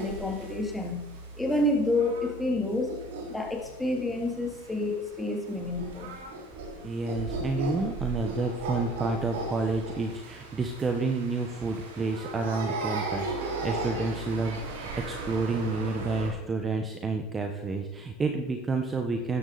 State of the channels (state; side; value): normal; both; correlation 0.54